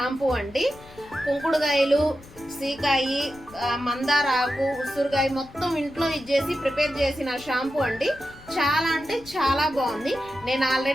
అండి. కుంకుడుకాయలు, సీకాయి, మందార ఆకు, ఉసురుకాయ మొత్తం ఇంట్లో ఇచ్చేసి ప్రిపేర్ చేసిన షాంపూ అండి. చాలా అంటే చాలా బాగుంది. నేను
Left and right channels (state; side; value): noise; left; rumble, 22 dB below the sound